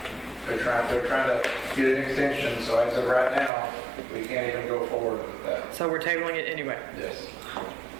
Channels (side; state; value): left; drops out; at 3.5 s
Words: they're trying to get an extension, so as of right now, we can't even go forward with that. So we're tabling it anyway. Yes.